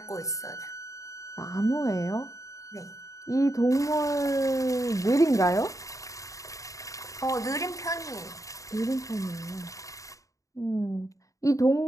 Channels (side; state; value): right; late; 0.16 ms